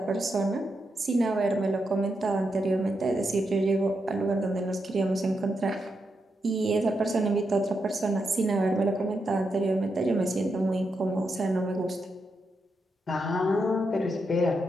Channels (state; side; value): normal; both; correlation 0.84